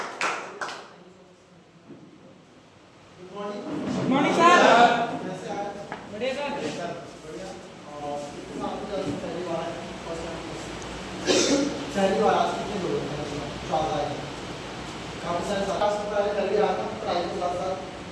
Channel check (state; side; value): identical; both; correlation 1.00